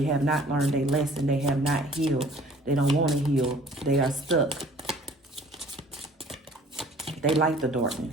have not learned their lesson. They have not healed. They don't want to heal. They are stuck. They like the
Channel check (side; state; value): both; normal; correlation 0.52